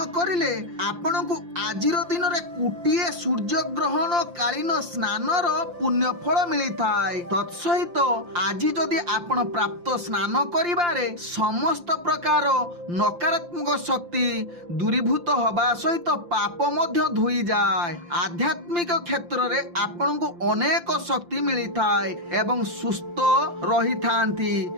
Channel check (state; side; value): late; left; 5.8 ms